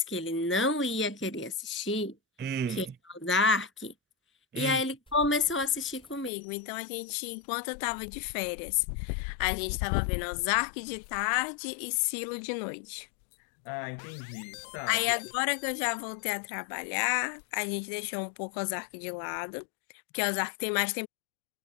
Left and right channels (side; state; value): right; drops out; at 6.3 s